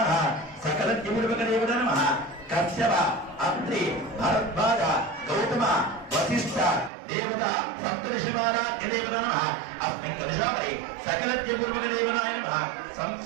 సకల పూర్వక దేవత నమః కశ్యప అత్రి భరద్వాజ గౌతమ వశిష్ఠ దేవత సప్తర్షిమారాధ్య దేవత నమః అస్మిన్ కలశాపరి సకల పూర్వక దేవతాయ నమః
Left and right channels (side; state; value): left; drops out; at 6.9 s